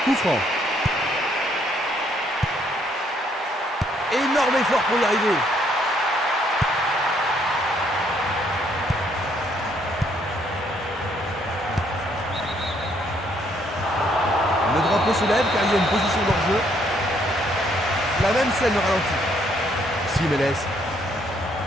Coup franc. Énorme effort pour y arriver. Le drapeau se lève car il y a une position d'hors-jeu. La même scène au ralenti. Jiménez.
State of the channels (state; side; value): normal; both; correlation 0.68